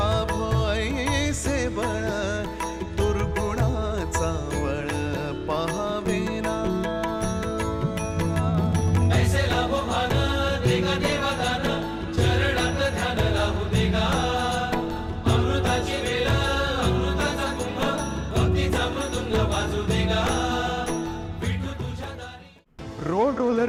ऐसे बळ दुर्गुणाचा बळ पहावेना। ऐसे लाभो भान देगा देवा दान चरणात ध्यान लाभू देगा। अमृताची वेळ अमृताचा कुंभ भक्तीचा मृदुंग वाजू देगा। रोड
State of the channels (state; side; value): identical; both; correlation 1.00